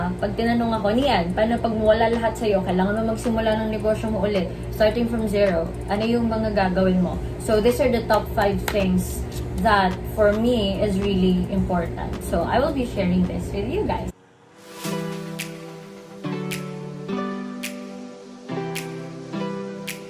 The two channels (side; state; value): both; identical; correlation 1.00